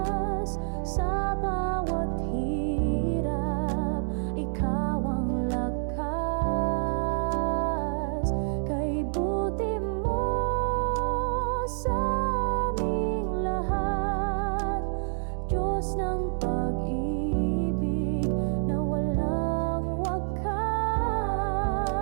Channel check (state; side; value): silent; left; 59 dB below the other